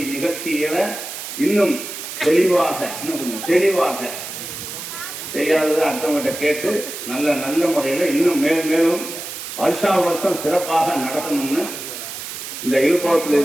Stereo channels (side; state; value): right; noise; hiss, 9 dB below the sound